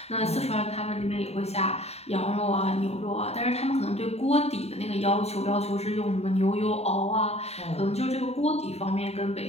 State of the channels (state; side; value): late; right; 0.30 ms